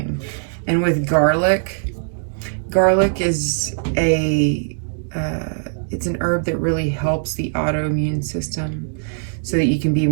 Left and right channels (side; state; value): left; silent; digital silence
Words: And with garlic is it's an herb that really helps the autoimmune system so that you can be